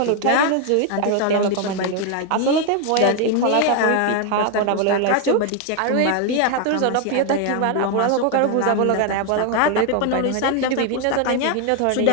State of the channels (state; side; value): different; both; correlation 0.01